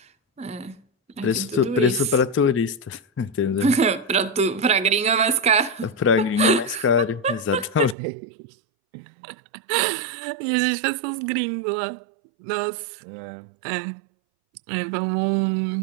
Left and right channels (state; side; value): drops out; left; at 8.0 s